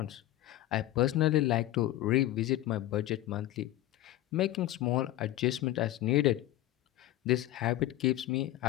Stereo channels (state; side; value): quieter; right; 15.0 dB